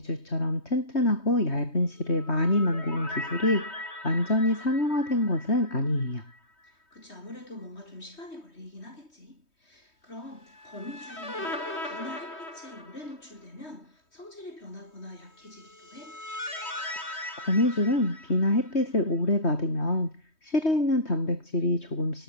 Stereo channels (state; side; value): late; right; 3.2 ms